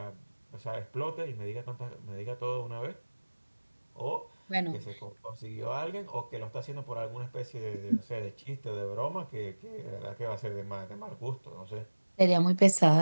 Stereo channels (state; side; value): inverted; both; correlation -1.00